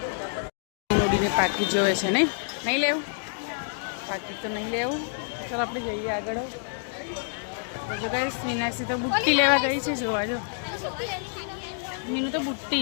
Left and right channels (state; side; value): silent; right; digital silence